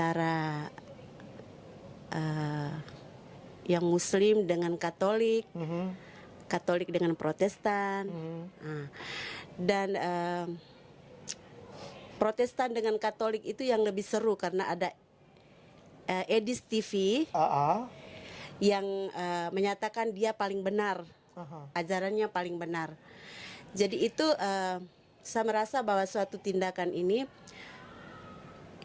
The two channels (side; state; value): both; identical; correlation 1.00